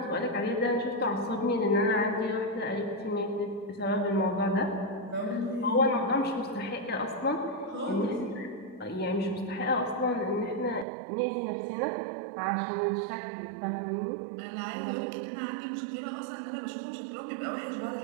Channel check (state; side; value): drops out; left; at 10.9 s